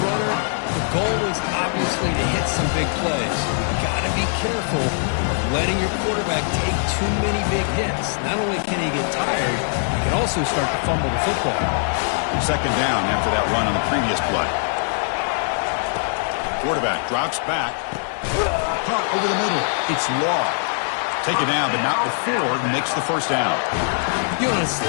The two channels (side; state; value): right; silent; digital silence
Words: runner, the goal is obviously to hit some big plays. You got to be careful of letting your quarterback take too many big hits. Not only can he get tired, he can also start to fumble the football. Second down after that run on the previous play. Quarterback drops back. Caught over the middle. It's Law. Take it down, but not before he makes the first down. You know, on a